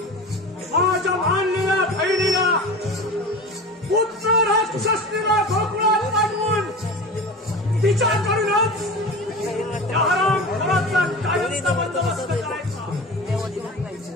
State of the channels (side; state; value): both; normal; correlation 0.32